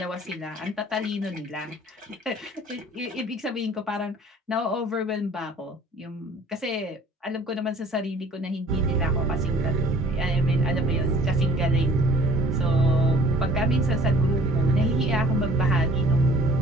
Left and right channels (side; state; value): both; normal; correlation 0.52